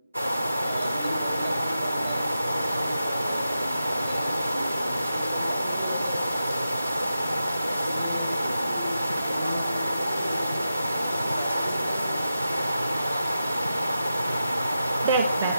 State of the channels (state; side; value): inverted; both; correlation -0.90